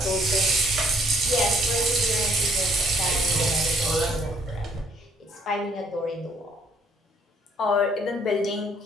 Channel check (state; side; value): normal; both; correlation 0.64